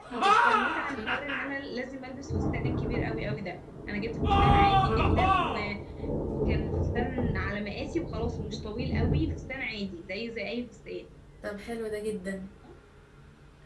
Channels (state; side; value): identical; both; correlation 1.00